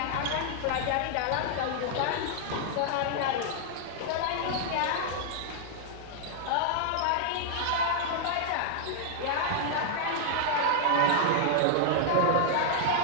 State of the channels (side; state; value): both; different; correlation -0.01